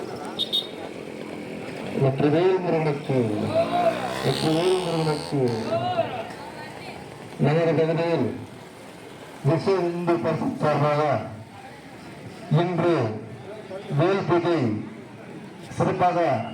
வெற்றிவேல் முருகனுக்கு, வெற்றிவேல் முருகனுக்கு. நகர பகுதியில் விஸ்வ இந்து பரிஷத் சார்பாக இன்று வேல் பூஜை சிறப்பாக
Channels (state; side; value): identical; both; correlation 1.00